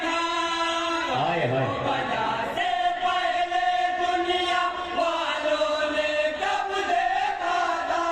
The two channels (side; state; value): both; identical; correlation 1.00